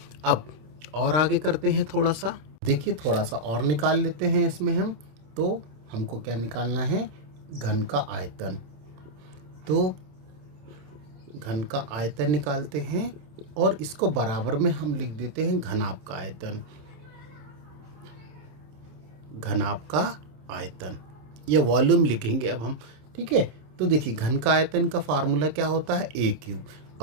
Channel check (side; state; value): left; late; 27 ms